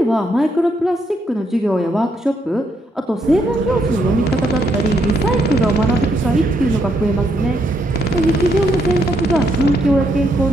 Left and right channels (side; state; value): both; normal; correlation 0.76